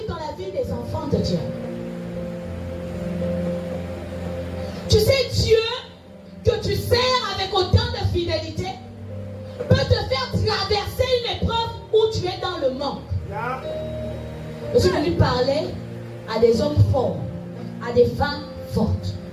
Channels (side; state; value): both; identical; correlation 1.00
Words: dans la vie des enfants de Dieu. Tu sais, Dieu, que tu sers avec autant de fidélité, peut te faire traverser une épreuve où tu es dans le manque. Je suis venu parler à des hommes forts, à des femmes fortes.